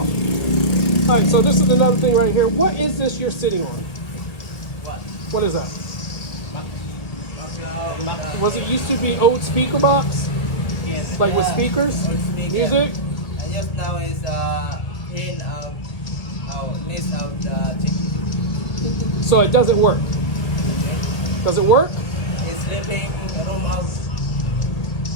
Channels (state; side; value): late; right; 1.8 ms